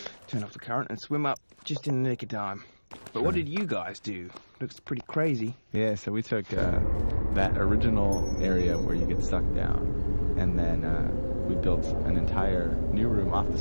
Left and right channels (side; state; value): both; inverted; correlation -1.00